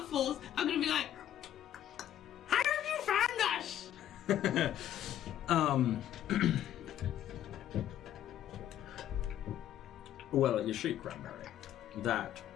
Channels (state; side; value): quieter; right; 11.4 dB